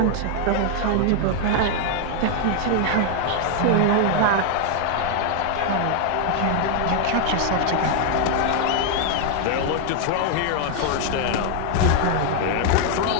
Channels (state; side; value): different; both; correlation 0.00